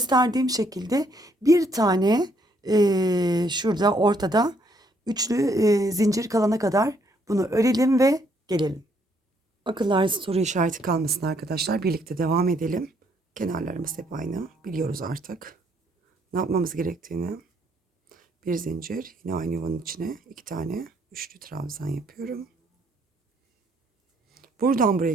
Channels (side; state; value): both; normal; correlation 0.69